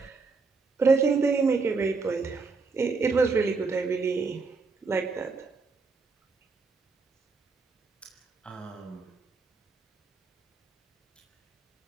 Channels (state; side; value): quieter; left; 4.4 dB